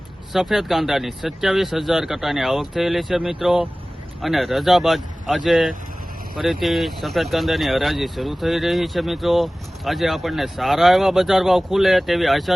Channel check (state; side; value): normal; both; correlation 0.98